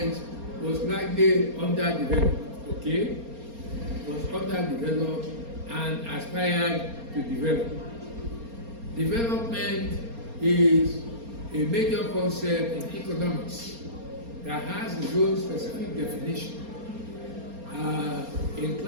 was likely underdeveloped, okay? Was underdeveloped and aspired to develop. Development is a major concept in economics that has its own specific definition. In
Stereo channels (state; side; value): late; left; 4.3 ms